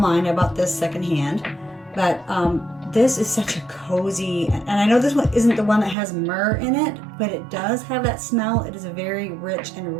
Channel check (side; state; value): left; drops out; at 6.0 s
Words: I bought this secondhand, but this is such a cozy, and I know this one isn't the one that has myrrh in it, but it does have that smell. It is a very rich